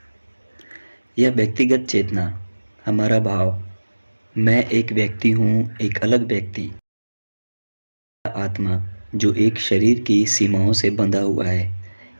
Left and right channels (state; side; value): inverted; both; correlation -1.00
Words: यह व्यक्तिगत चेतना, हमारा भाव, मैं एक व्यक्ति हूँ, एक अलग व्यक्ति, आत्मा जो एक शरीर की सीमाओं से बंधा हुआ है,